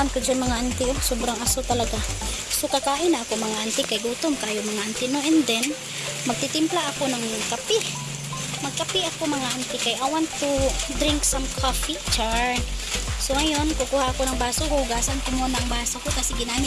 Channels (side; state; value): both; identical; correlation 1.00